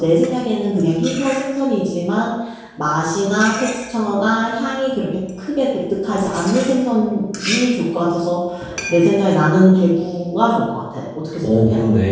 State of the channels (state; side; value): identical; both; correlation 1.00